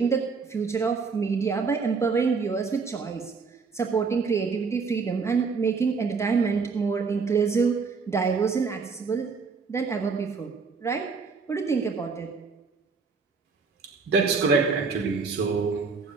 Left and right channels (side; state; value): left; quieter; 4.9 dB